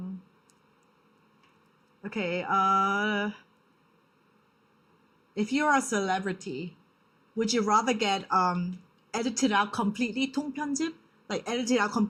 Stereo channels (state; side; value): identical; both; correlation 1.00